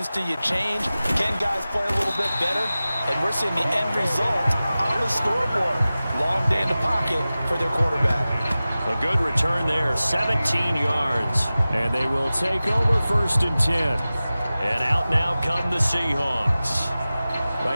do you change? Can guys play a little bit better? And we're seeing the end result on the scoreboard. Long day in the pocket for their quarterback. A good return there, 17 yards. And they will take over 1st and 10. And out now come the Seahawks.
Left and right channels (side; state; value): both; inverted; correlation -0.96